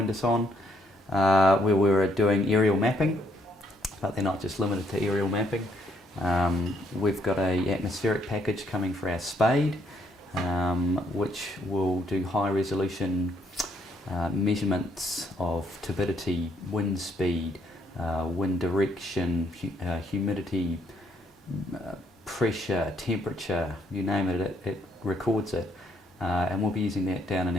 us on, where we were doing aerial mapping, but they're not just limited to aerial mapping. We've got an atmospheric package coming for our spade, which will do high resolution measurements of turbidity, wind speed, wind direction, humidity, pressure, temperature, you name it, it records it. And we'll be using that down in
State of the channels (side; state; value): both; normal; correlation 0.71